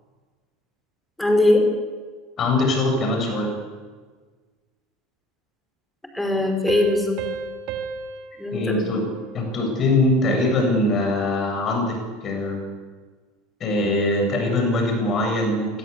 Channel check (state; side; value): normal; both; correlation 0.48